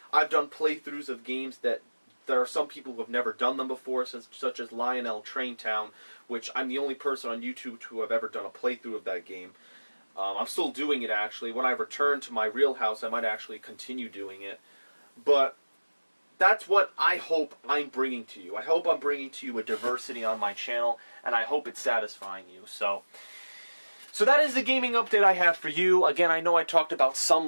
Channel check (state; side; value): inverted; both; correlation -1.00